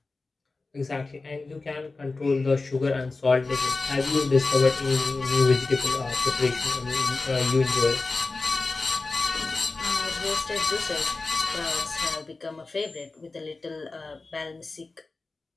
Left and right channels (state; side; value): quieter; right; 3.6 dB